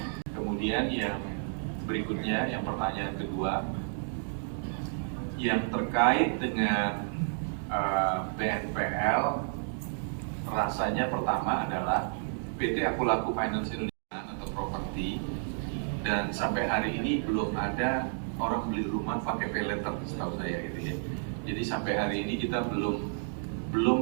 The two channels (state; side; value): silent; left; digital silence